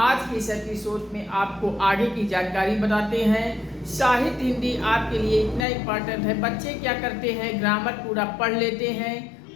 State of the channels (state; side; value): drops out; right; at 5.7 s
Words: के इस एपिसोड में आपको आगे की जानकारी बताते हैं। साहित्य हिंदी आपके लिए इतना इम्पॉर्टेंट है। बच्चे क्या करते हैं, ग्रामर पूरा पढ़ लेते हैं